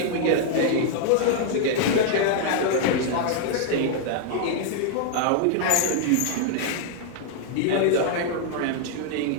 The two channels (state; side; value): different; both; correlation -0.01